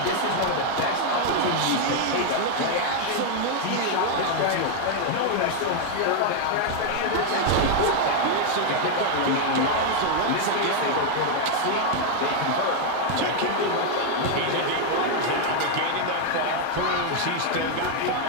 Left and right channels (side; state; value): both; different; correlation 0.00